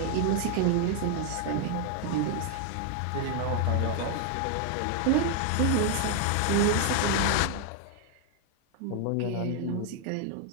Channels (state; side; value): different; both; correlation 0.00